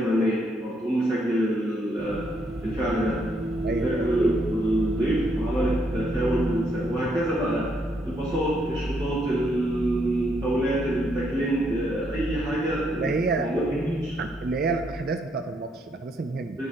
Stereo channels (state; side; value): normal; both; correlation 0.74